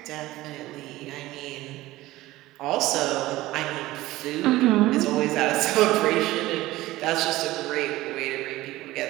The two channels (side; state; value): left; quieter; 17.4 dB